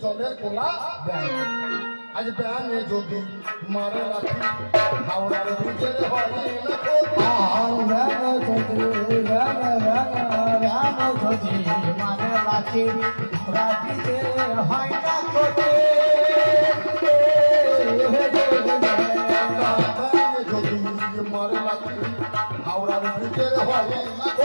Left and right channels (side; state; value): both; inverted; correlation -1.00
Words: জলের কোলা ব্যান। আজ ব্যানে যদি মারে রাখি হাওড়ার ব্রিজের হয় না মানে রাখি রাখিতে হয় না যদি মারে রাখি হাওড়ার ব্রিজের হয় না